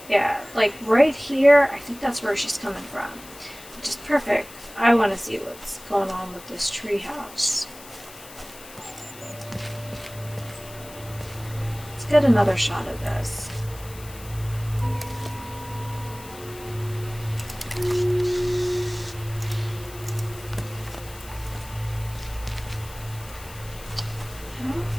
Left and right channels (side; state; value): left; noise; hiss, 17 dB below the sound